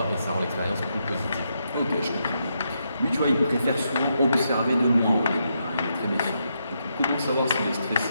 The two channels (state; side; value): inverted; both; correlation -0.81